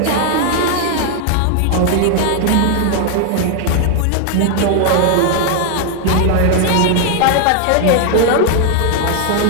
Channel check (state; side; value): different; both; correlation 0.00